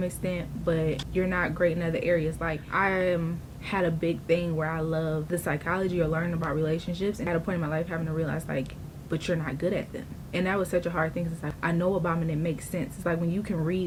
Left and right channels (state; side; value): identical; both; correlation 1.00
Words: extent, but you're not great in other areas. Like I am had a big thing where I love the psychology or learning about relationships, and at a point in my life having to realize, like, but you're not good at them. And that was such a hard thing. It's like, I know about them and it makes sense. It's like when you can